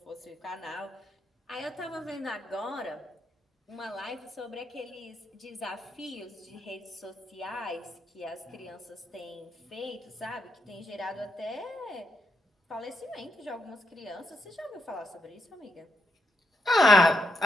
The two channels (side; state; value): both; normal; correlation 0.82